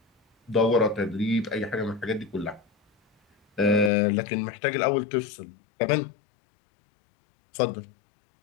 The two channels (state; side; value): drops out; right; at 3.9 s